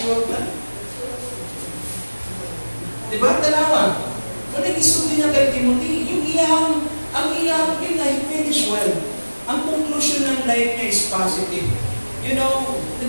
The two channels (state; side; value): inverted; both; correlation -1.00